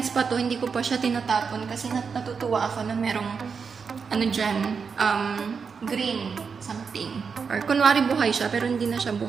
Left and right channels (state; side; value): quieter; left; 5.7 dB